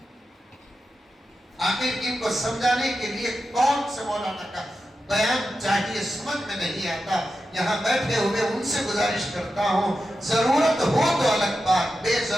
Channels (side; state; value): both; normal; correlation 0.90